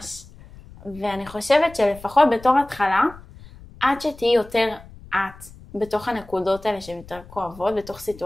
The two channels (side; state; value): left; noise; rumble, 20 dB below the sound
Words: ואני חושבת שלפחות בתור התחלה, עד שתהי יותר את בתוך הנקודות האלה שהן יותר כואבות, בתוך